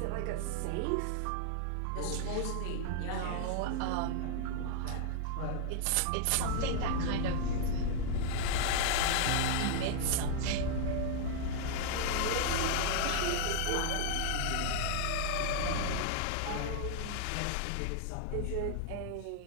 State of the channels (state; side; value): different; both; correlation 0.00